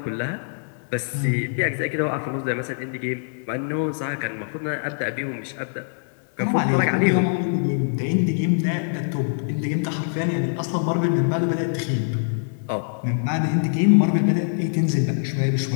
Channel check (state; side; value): silent; right; digital silence